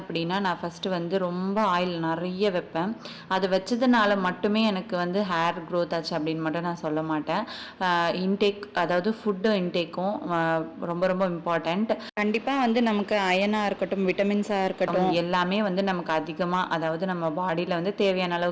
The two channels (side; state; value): both; identical; correlation 1.00